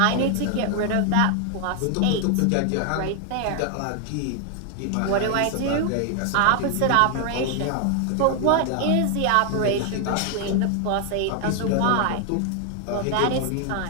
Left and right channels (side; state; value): both; different; correlation 0.00